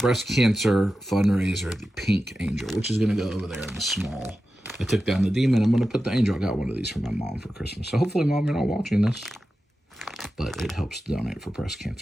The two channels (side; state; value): both; normal; correlation 0.92